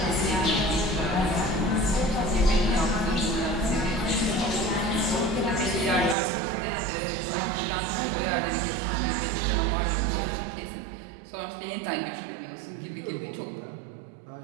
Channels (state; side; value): drops out; left; at 6.2 s